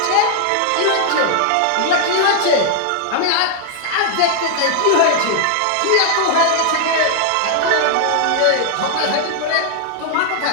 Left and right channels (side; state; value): both; different; correlation 0.00